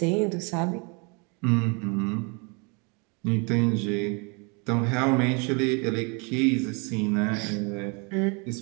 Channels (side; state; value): left; quieter; 32.2 dB